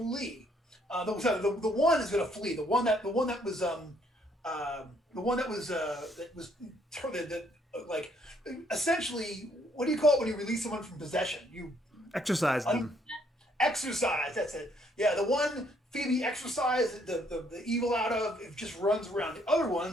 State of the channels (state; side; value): normal; both; correlation 0.68